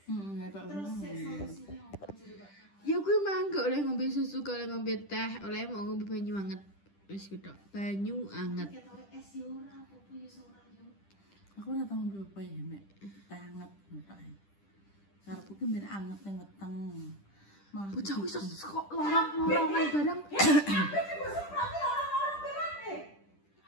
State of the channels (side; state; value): right; late; 10 ms